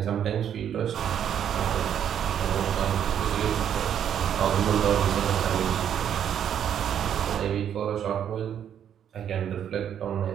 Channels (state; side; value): quieter; left; 9.3 dB